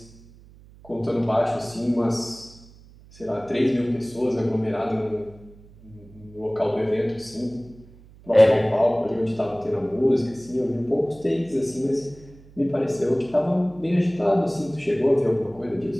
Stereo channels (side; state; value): right; noise; hum, 23 dB below the sound